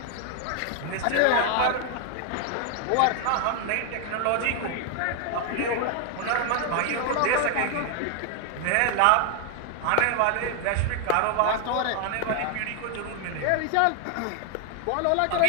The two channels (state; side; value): different; both; correlation 0.00